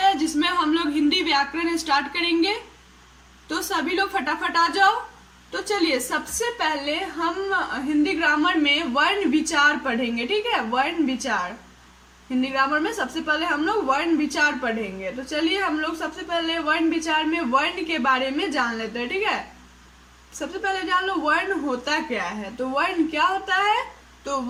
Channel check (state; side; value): identical; both; correlation 1.00